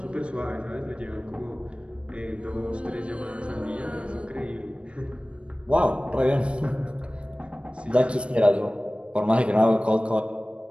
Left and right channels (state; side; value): late; left; 0.059 ms